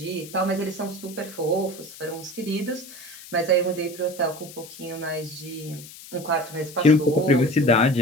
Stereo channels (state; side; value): noise; left; hiss, 16 dB below the sound